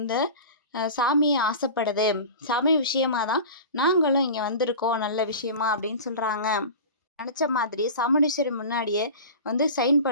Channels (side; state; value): both; inverted; correlation -0.34